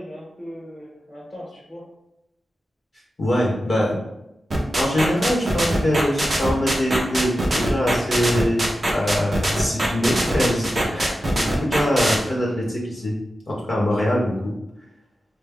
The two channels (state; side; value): normal; both; correlation 0.92